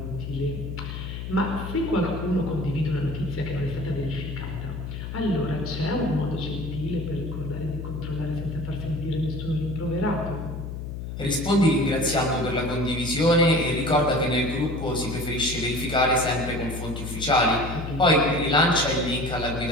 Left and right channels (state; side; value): noise; left; hum, 7 dB below the sound